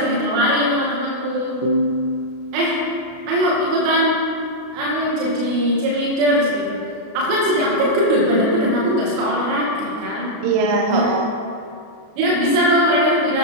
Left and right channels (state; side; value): late; left; 32 ms